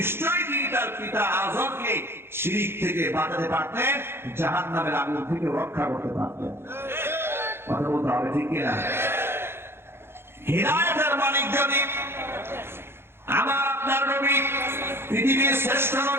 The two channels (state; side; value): late; left; 0.11 ms